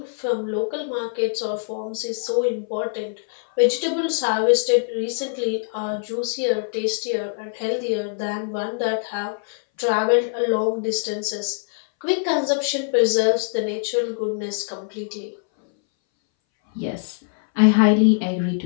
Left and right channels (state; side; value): silent; right; 61 dB below the other